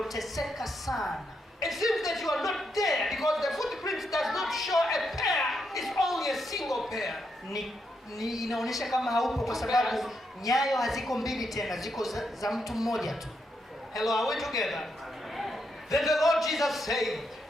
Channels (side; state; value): both; normal; correlation 0.80